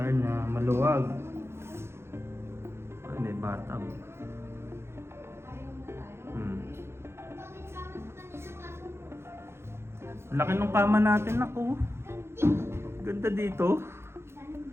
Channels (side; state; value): left; late; 0.12 ms